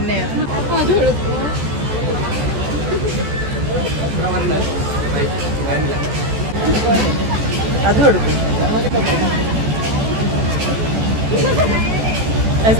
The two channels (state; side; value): late; left; 14 ms